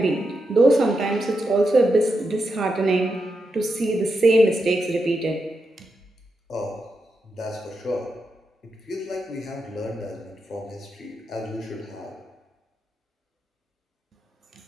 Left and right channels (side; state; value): both; normal; correlation 0.86